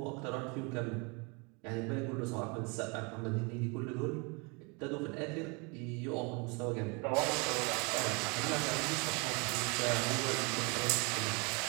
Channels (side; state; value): left; quieter; 30.7 dB